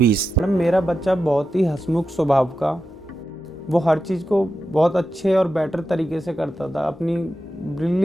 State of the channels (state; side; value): normal; both; correlation 0.90